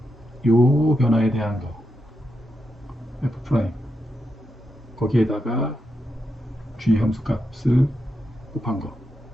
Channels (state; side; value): normal; both; correlation 0.85